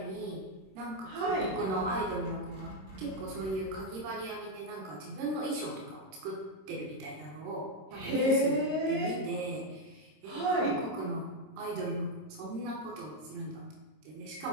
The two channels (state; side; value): late; left; 26 ms